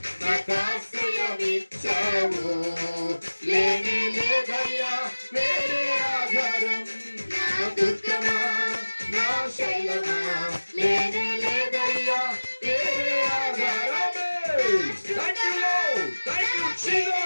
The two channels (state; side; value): inverted; both; correlation -1.00